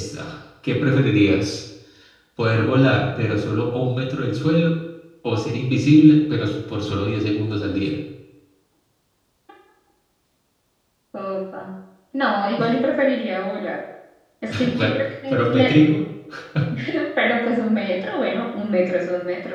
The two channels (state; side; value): identical; both; correlation 1.00